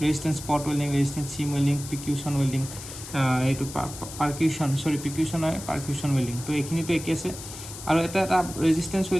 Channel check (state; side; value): noise; left; hiss, 12 dB below the sound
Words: স্পট ৱেল্ডিং ৰেজিষ্টেন্স সিম ৱেল্ডিং প্ৰিকিউশ্যন ৱেল্ডিং এইটো পাৰ্কিউশ্যন ৱেল্ডিং তো এইখিনিতো একেই আছে আৰু এটা ৰেজিষ্টেন্স